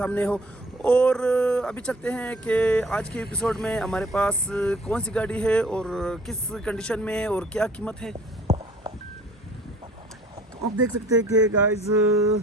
हो। और अभी चलते हैं कि आज के एपिसोड में हमारे पास कौन सी गाड़ी है और किस कंडीशन में है और क्या कीमत है। तो आप देख सकते हैं कि गाइस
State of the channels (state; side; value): normal; both; correlation 0.53